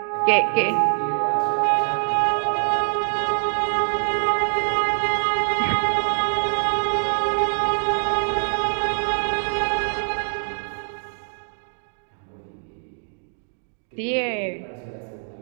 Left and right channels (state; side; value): silent; left; digital silence